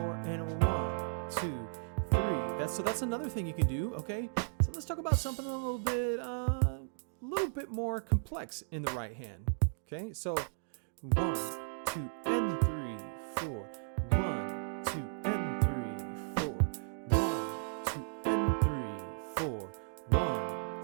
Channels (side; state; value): left; silent; digital silence